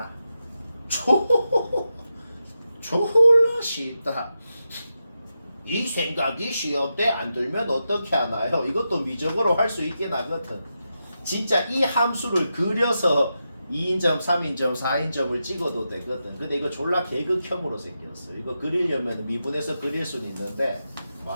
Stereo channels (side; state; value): both; inverted; correlation -0.88